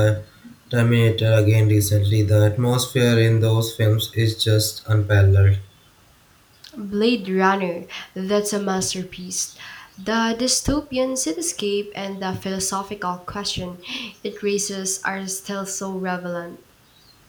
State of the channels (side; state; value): both; identical; correlation 1.00